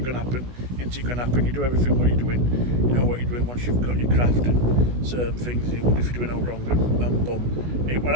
to happen? Isn't it going to happen? You do everything what you're doing. You know what you're doing once you've got your craft and certain things. You wonder if you're doing all wrong, and boom. It were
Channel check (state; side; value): late; left; 16 ms